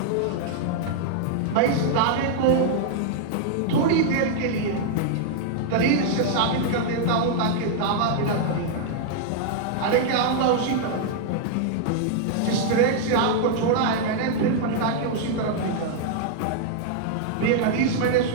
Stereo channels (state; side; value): different; both; correlation -0.01